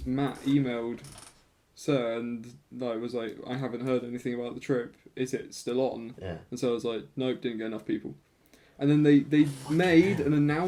Matt emailed Sir and was like, I haven't heard anything about the trip. Is it still on? Yeah. And so I was like, nope, didn't get enough people. And then they made an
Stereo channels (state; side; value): identical; both; correlation 1.00